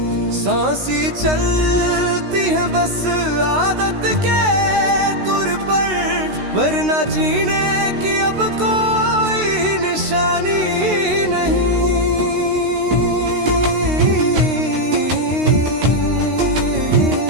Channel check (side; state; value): left; late; 16 ms